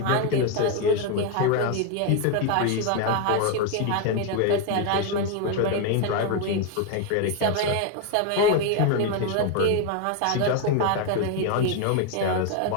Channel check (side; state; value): both; different; correlation 0.01